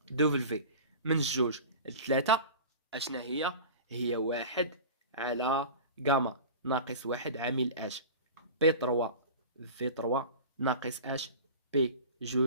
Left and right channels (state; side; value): inverted; both; correlation -0.35